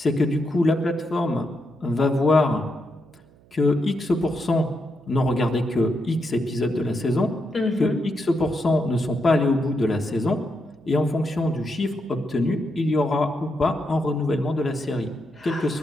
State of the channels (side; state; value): right; noise; hum, 28 dB below the sound